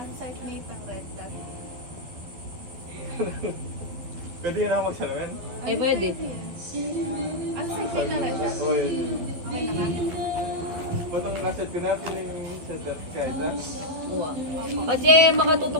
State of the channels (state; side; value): late; left; 12 ms